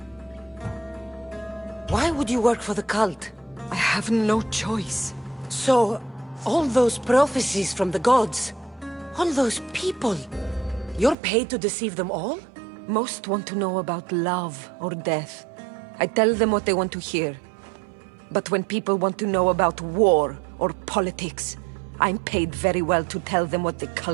Why would you work for the cult? I have no choice. So, all those prophecies from the gods, all those people, you're paid to deceive them all? Most want to know about love or death. I tell them what they want to hear. But when people want to know about war or politics, I'm paid very well to tell them what the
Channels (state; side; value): drops out; left; at 11.2 s